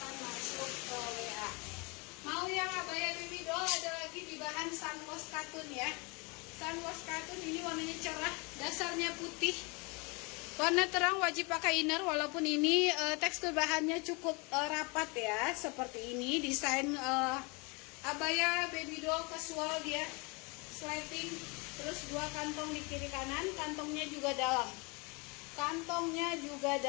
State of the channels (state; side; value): quieter; right; 29.6 dB